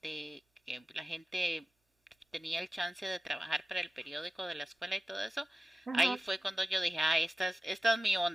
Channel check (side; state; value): both; normal; correlation 0.94